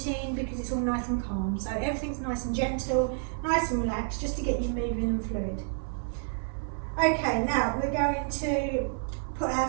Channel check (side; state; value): left; silent; 58 dB below the other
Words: because it's all nice and calm. So everything's nice and gentle, nice and relaxed, just to get you moving and fluid. Okay, now we're going to put our